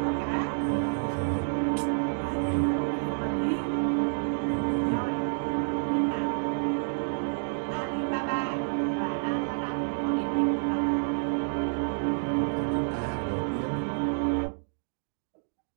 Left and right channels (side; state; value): left; silent; digital silence